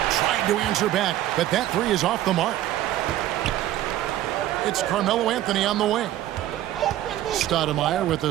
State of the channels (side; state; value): left; quieter; 13.5 dB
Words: to answer back, but that 3 is off the mark. It's Carmelo Anthony on the wing. Stoudemire with